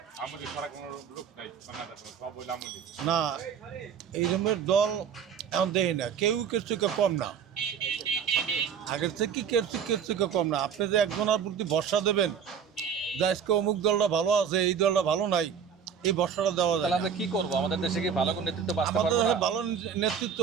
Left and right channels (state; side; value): quieter; left; 7.3 dB